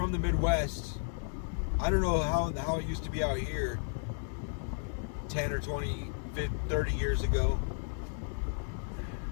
the Midwest. I don't know how it used to be out here 10 or 20, 50, 30 years ago.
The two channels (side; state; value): right; silent; digital silence